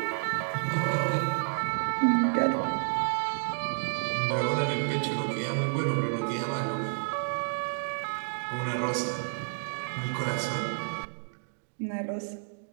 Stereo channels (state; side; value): silent; left; digital silence